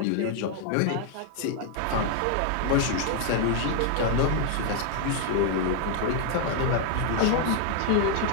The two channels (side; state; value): both; different; correlation 0.00